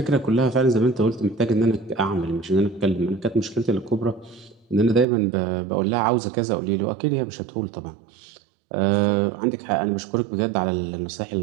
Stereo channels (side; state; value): left; drops out; at 5.1 s